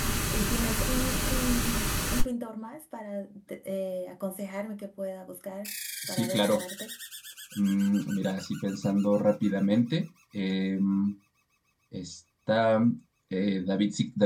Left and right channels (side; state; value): both; identical; correlation 1.00